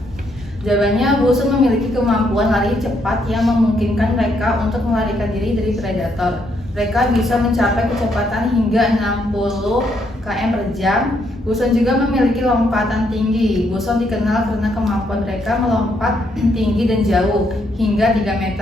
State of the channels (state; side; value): normal; both; correlation 0.74